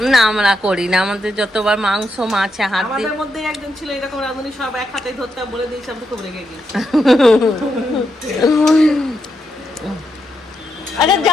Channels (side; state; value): both; normal; correlation 0.82